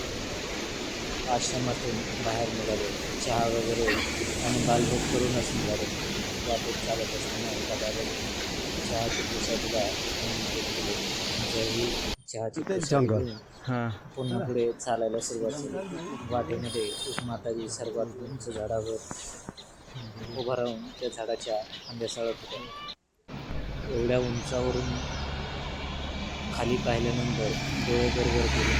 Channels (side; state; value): both; identical; correlation 1.00